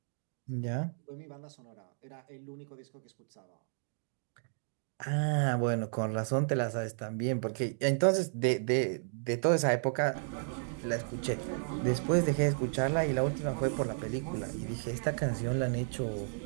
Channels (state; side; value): silent; left; digital silence